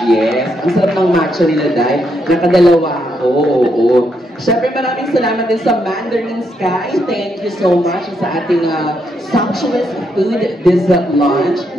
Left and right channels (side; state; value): both; normal; correlation 0.78